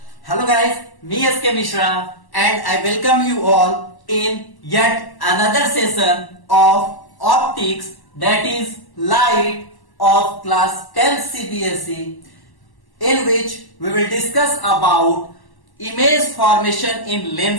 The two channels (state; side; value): late; right; 1.1 ms